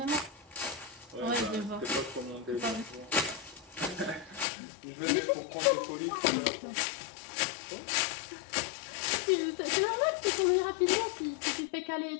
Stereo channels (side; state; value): right; drops out; at 4.5 s